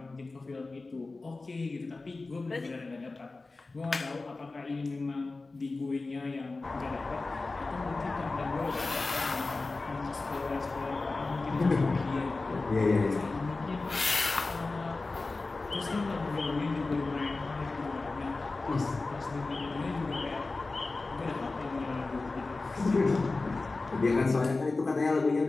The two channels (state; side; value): quieter; right; 3.5 dB